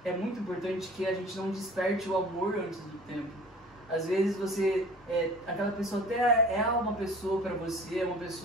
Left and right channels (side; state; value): both; normal; correlation 0.45